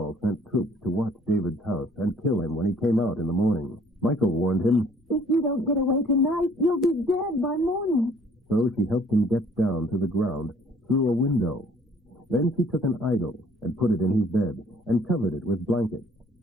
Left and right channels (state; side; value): normal; both; correlation 0.58